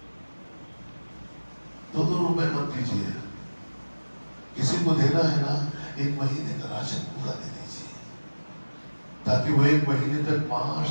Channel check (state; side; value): inverted; both; correlation -1.00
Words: 2 روپے مت دیجیے، کسی کو دینا ہے نا 1 مہینے کا راشن پورا دے دیجیے، تاکہ وہ 1 مہینے تک معاش